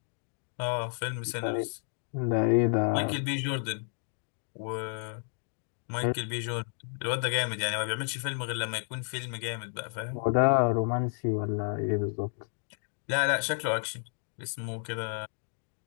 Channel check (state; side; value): silent; right; 57 dB below the other